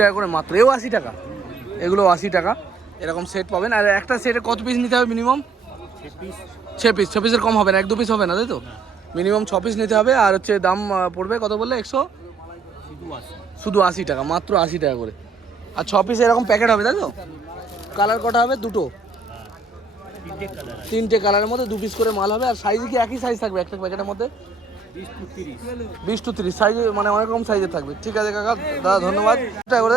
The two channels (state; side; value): quieter; left; 4.3 dB